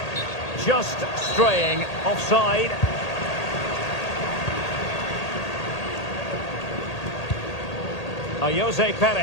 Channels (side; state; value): right; late; 1.8 ms